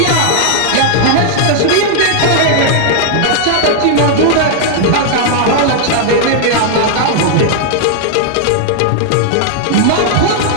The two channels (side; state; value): both; different; correlation -0.01